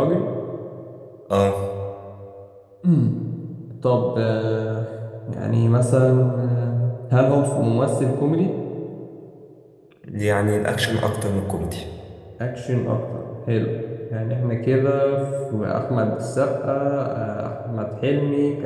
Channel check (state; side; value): identical; both; correlation 1.00